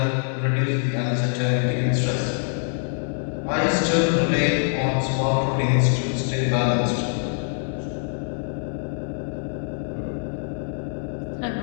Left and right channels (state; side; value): silent; right; 62 dB below the other